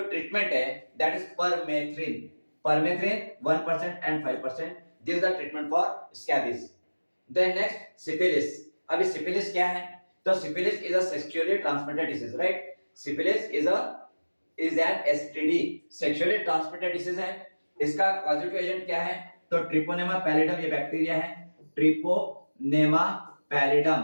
है, that is permethrin. Permethrin 1% and 5%, this is the treatment for scabies. Then next, syphilis. अभी syphilis क्या है? तो syphilis is a sexually transmitted disease, right? Syphilis is an STD, sexually transmitted disease है। इसका पॉजिटिव एजेंट क्या है? तो treponema pallidum ये बैक्टीरिया है, ट्रिपोनेमा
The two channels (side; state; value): both; inverted; correlation -1.00